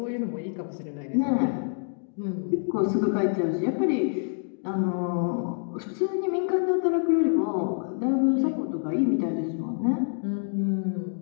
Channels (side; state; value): right; silent; digital silence